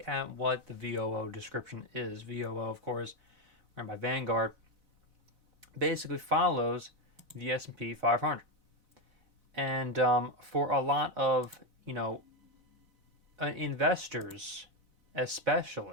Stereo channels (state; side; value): late; left; 4.0 ms